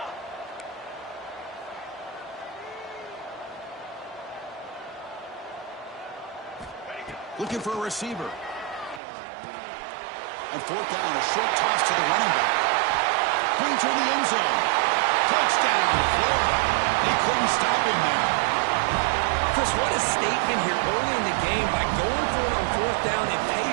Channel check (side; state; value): left; drops out; at 9.0 s